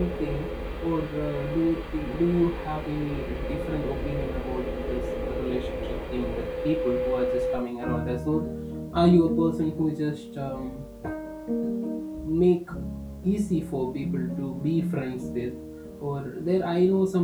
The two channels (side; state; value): both; identical; correlation 1.00